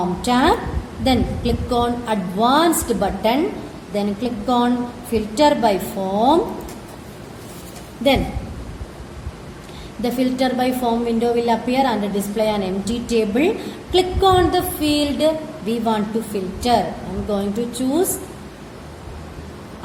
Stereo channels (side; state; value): both; identical; correlation 1.00